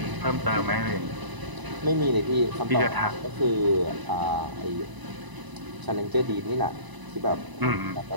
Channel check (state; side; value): late; left; 1.0 ms